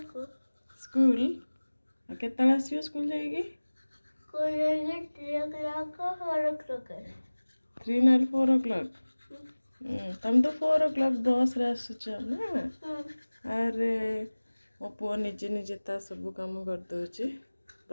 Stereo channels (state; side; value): inverted; both; correlation -1.00